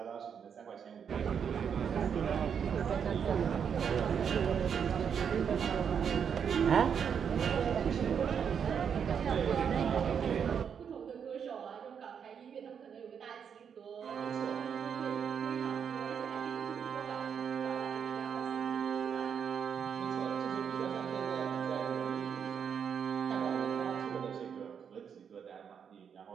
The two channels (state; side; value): quieter; left; 7.4 dB